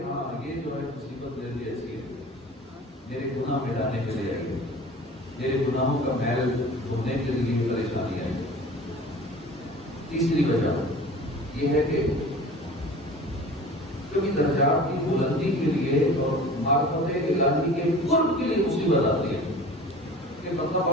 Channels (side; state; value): both; normal; correlation 0.41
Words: ہاں یہ جو ہے مصیبت میرے لیے ایسی ہے، میرے گناہ مٹانے کے لیے آئی ہے، میرے گناہوں کا میل دھونے کے لیے پریشانی آئی. تیسری وجہ یہ ہے کہ کبھی درجات کی بلندی کے لیے اور معرفت الہی کے قرب کے لیے مصیبت آتی ہے کہ مطلب